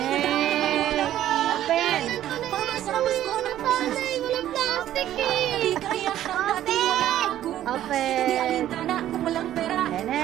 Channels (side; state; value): left; quieter; 12.4 dB